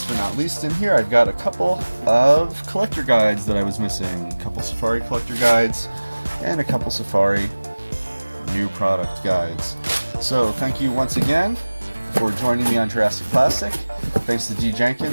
but not least, in here I've got a couple of collector guides that I was missing. A couple Safari collector guides and a couple Safari new product guides. So thank you once again for joining me on Jurassic Plastic. Thanks to D.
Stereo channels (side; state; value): both; inverted; correlation -1.00